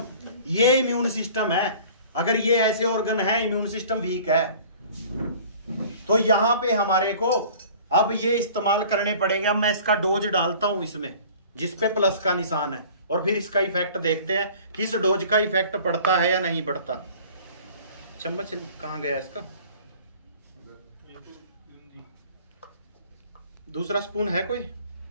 ये इम्यून सिस्टम है। अगर ये ऐसे ऑर्गन है, इम्यून सिस्टम वीक है, तो यहां पे हमारे को अब ये इस्तेमाल करने पड़ेंगे। अब मैं इसका डोज डालता हूं इसमें, जिसपे प्लस का निशान है, और फिर इसका इफेक्ट देखते हैं कि इस डोज का इफेक्ट पड़ता है या नहीं पड़ता। चम्मच कहां गया इसका? दूसरा स्पून है कोई?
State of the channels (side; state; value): both; inverted; correlation -0.47